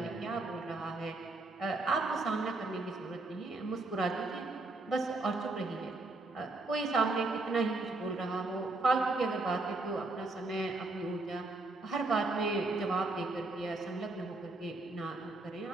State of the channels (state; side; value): quieter; left; 3.1 dB